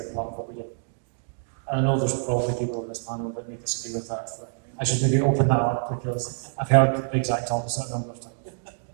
club of what we do. And I know there's probably people in this panel that may disagree with that. So I should maybe open that up, because I've heard the exact opposite a number of times.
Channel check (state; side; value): silent; left; digital silence